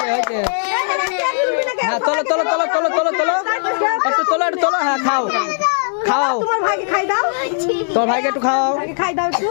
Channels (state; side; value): silent; right; digital silence